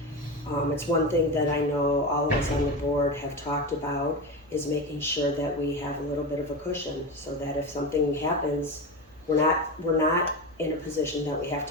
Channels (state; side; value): normal; both; correlation 0.21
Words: It's one thing that I know all of us on the board have talked about, is making sure that we have a little bit of a cushion, so that if something happens, we're not in a position that we have